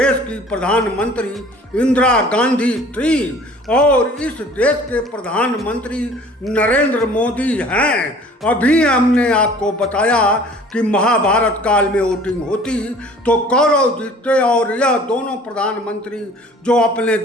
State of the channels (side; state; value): both; normal; correlation 0.49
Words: की प्रधानमंत्री इंदिरा गांधी थी और इस देश के प्रधानमंत्री नरेंद्र मोदी हैं। अभी हमने आपको बताया कि महाभारत काल में वोटिंग होती तो कौरव जीतते और यह दोनों प्रधानमंत्री जो अपने